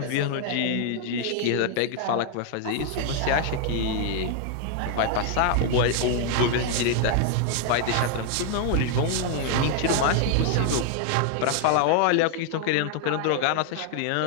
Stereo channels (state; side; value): different; both; correlation 0.00